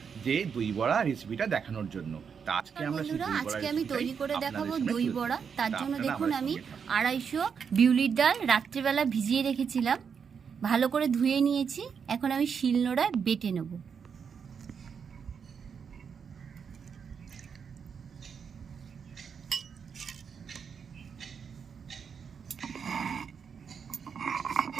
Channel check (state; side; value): quieter; left; 6.6 dB